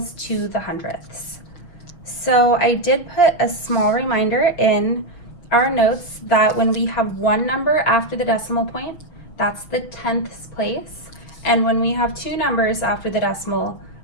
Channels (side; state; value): right; late; 6.0 ms